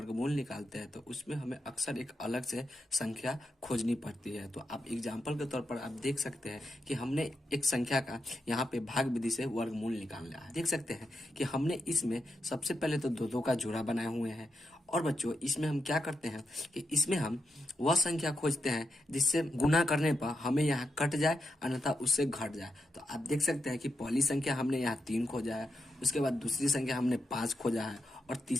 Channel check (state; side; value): normal; both; correlation 0.85